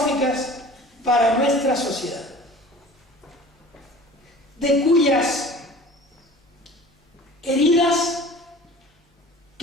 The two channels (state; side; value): normal; both; correlation 0.43